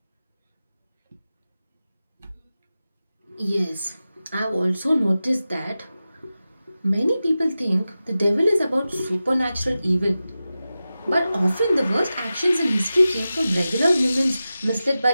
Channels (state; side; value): inverted; both; correlation -0.94